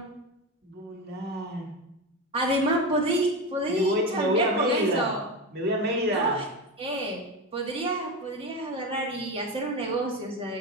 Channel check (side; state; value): both; normal; correlation 0.20